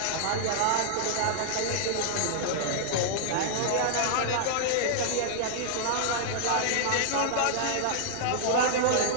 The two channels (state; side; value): different; both; correlation -0.01